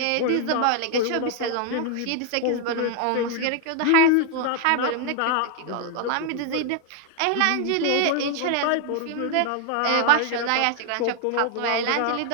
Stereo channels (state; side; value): different; both; correlation 0.00